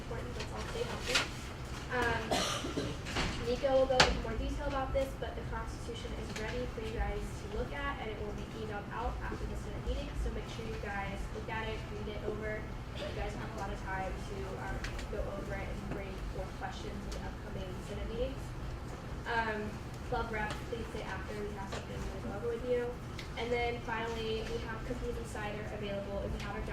Let's all stay healthy. Nico will go into more detail about this, but the Constitution is ready for you guys to look at, and it will be emailed out after the Senate meeting. So make sure you guys look at it, read it over. You guys have a lot of time to go over it and bring forth questions in the upcoming Senate meetings. Club rep, please stay after. We have something to go over with you. And then finally, we have cookies and cider available. If you haven't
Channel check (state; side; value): identical; both; correlation 1.00